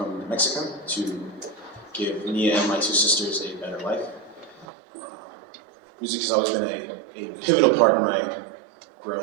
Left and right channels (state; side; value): drops out; left; at 4.7 s